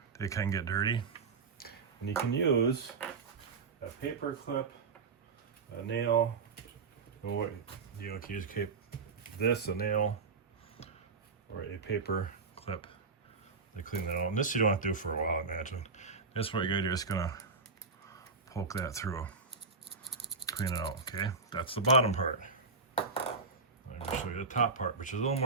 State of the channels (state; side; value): quieter; left; 4.5 dB